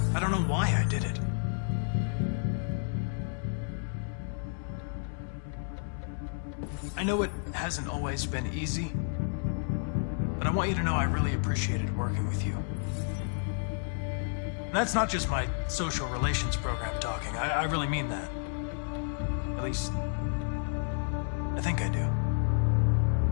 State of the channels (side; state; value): right; silent; 57 dB below the other